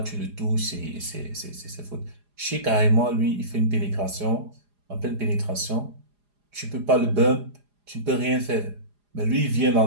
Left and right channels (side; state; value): left; late; 4.9 ms